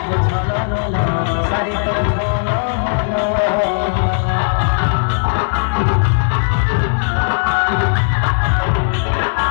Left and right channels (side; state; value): right; silent; digital silence